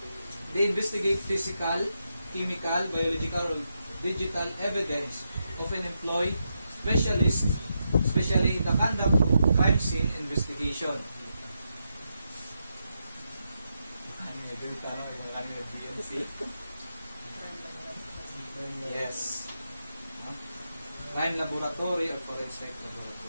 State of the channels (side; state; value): both; inverted; correlation -0.84